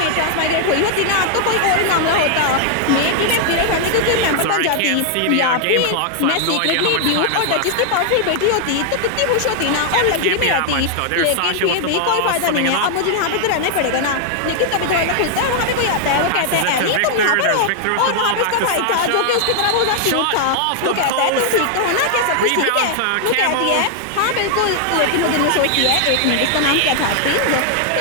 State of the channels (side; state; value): both; different; correlation -0.01